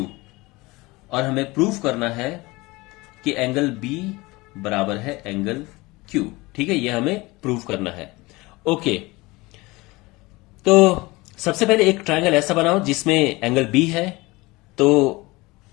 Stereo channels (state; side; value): quieter; right; 22.4 dB